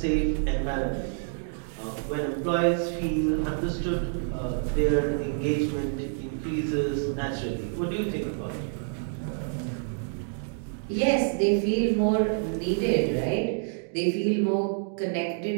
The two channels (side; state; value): left; silent; digital silence